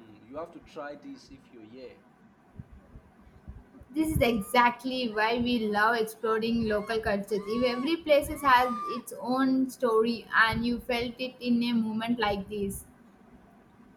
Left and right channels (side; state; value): both; identical; correlation 1.00